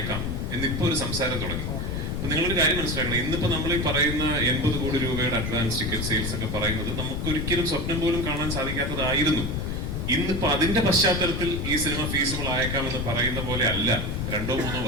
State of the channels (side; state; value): left; noise; rumble, 2 dB below the sound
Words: എന്നിപ്പോ ഒരു സംസാരം തുടങ്ങി. അപ്പൊ നിങ്ങളൊരു കാര്യം മനസ്സിലാക്കണം, ഇന്നിപ്പോ നമ്മൾ ഈ പറയുന്ന 80 കോടി രൂപയുടെ അഡ്വാൻസ് ടിക്കറ്റ് സെയിൽസ് ഒക്കെ പറയുന്നത് നമുക്കൊരിക്കലും സ്വപ്നം പോലും കാണാൻ സാധിക്കാത്തതായിരുന്നു. ഇന്നിപ്പോ അതിന്റെ പശ്ചാത്തലത്തിൽ ഈ സിനിമ ഫീസിബിൾ ആയേക്കാം എന്ന് പറയുന്ന പോലെ അല്ല 2-3